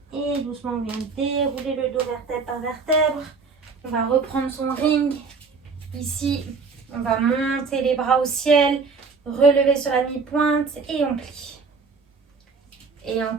Et doucement, on vient dérouler le dos vertèbre par vertèbre. On va reprendre son ring. Ici, on va monter les bras au ciel, relever sur la mi-pointe et on plie. Et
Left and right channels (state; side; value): quieter; left; 4.8 dB